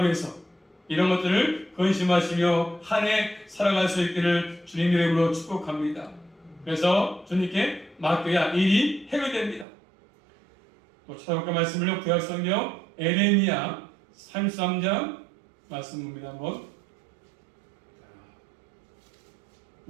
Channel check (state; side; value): drops out; left; at 9.7 s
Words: 위해서 이런 것들을 근심하시며 한 해 살아갈 수 있기를 주님 이름으로 축복합니다. 그래서 주님께 맡겨야 일이 해결됩니다. 또 찾아볼까 말씀을요. 구약성경 에레미야 33장 말씀 봅니다. 한번.